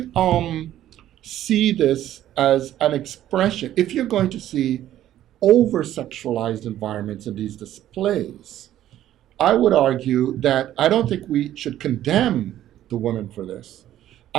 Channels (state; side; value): quieter; left; 12.5 dB